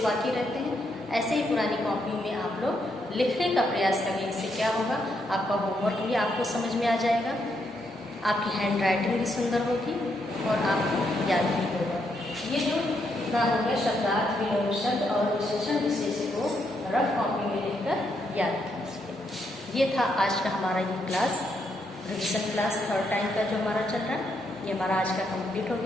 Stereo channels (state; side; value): normal; both; correlation 0.77